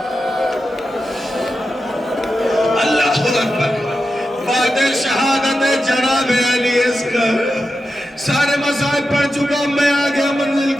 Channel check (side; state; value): both; normal; correlation 0.90